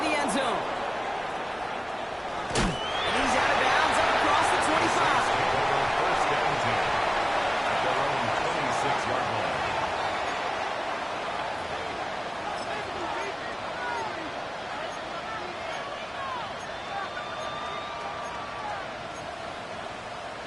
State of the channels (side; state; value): both; identical; correlation 1.00